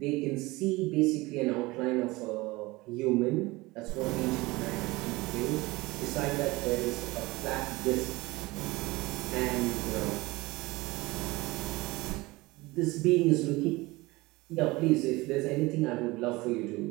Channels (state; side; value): quieter; left; 21.6 dB